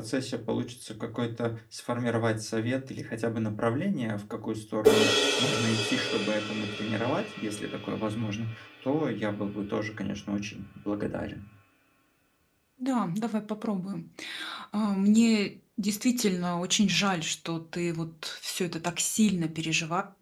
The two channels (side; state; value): both; identical; correlation 1.00